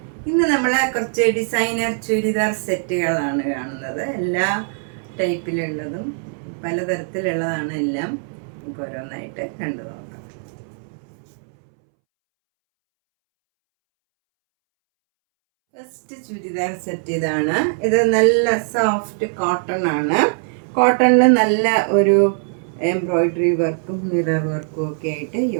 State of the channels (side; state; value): left; silent; 65 dB below the other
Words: ഇന്ന് നമ്മൾ കുറച്ച് ഡിസൈനർ ചുരിദാർ സെറ്റുകളാണ് കാണുന്നത്. എല്ലാ ടൈപ്പിലുള്ളതും പലതരത്തിലുള്ളതാണ് എല്ലാം. നമുക്ക് ഓരോന്നായിട്ട് കണ്ടു നോക്കാം. ഫസ്റ്റ് ചുരിദാർ സെറ്റ് ഇതാണ്. ഇത് നല്ല സോഫ്റ്റ് കോട്ടൺ ആണ്. കോട്ടണിൽ നല്ല ഒരു എംബ്രോയിഡറി വർക്കും മിറർ വർക്കും ഒക്കെ ആയിട്ട്